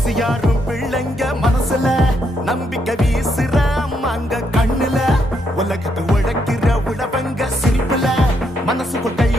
பிள்ளைங்க மனசுல நம்பிக்கை வீசுற அம்மாங்க கண்ணுல உலகத்து உழைக்கிற உழவங்க சிரிப்புல மனசுக்குள் கை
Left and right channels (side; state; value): both; normal; correlation 0.76